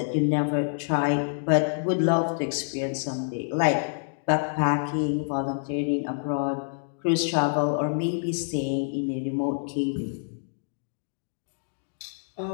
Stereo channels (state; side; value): silent; right; digital silence